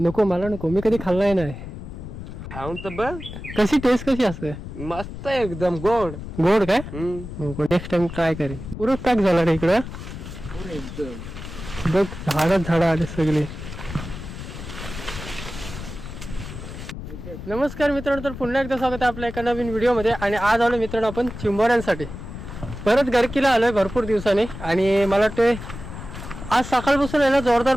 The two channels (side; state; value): left; noise; rumble, 10 dB below the sound